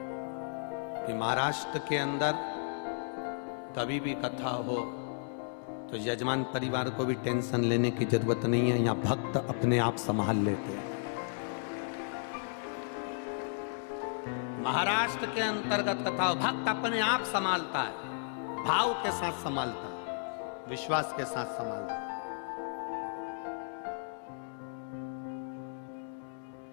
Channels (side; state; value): right; silent; digital silence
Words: कि महाराष्ट्र के अंदर कभी भी कथा हो तो यजमान परिवार को भी टेंशन लेने की जरूरत नहीं है। यहां भक्त अपने आप संभाल लेते हैं। महाराष्ट्र के अंतर्गत कथा भक्त अपने आप संभालता है, भाव के साथ संभालता है, विश्वास के साथ संभालता है।